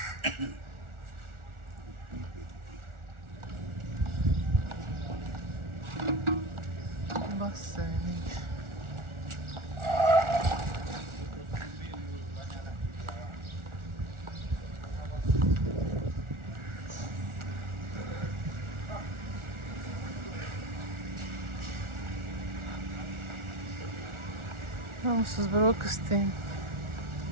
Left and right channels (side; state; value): left; late; 1.4 ms